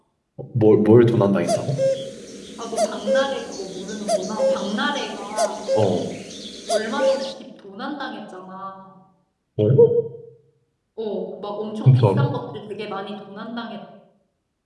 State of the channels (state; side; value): identical; both; correlation 1.00